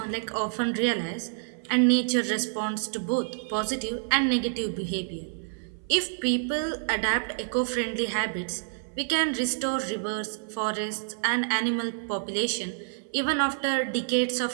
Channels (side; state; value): left; silent; 59 dB below the other